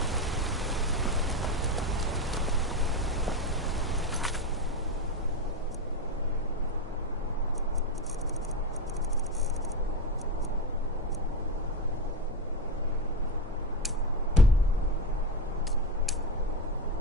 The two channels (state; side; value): normal; both; correlation 0.16